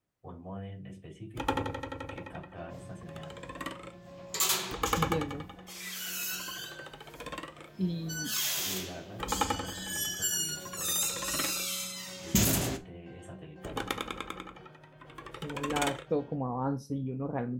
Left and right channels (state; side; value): identical; both; correlation 1.00